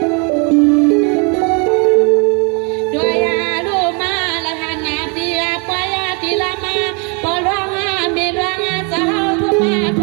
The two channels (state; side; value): quieter; left; 33.7 dB